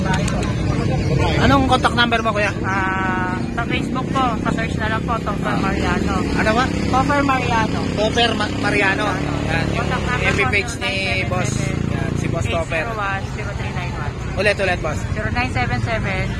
Anong contact number mo, kuya? Sa Facebook po, pa-search na lang po, Topper Mariano. Ano ba? Topper Mariano. Topper Mariano. Yan, yung Contact number FB po, page ni boss. Yan, si Boss Topper. 801-0391. Ulit, boss.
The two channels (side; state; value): both; identical; correlation 1.00